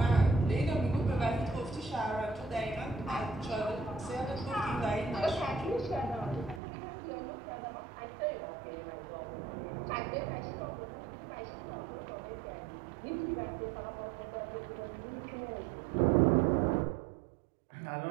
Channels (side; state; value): left; drops out; at 6.6 s